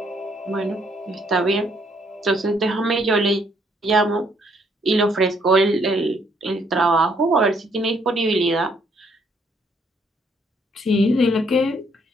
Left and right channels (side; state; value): both; normal; correlation 0.69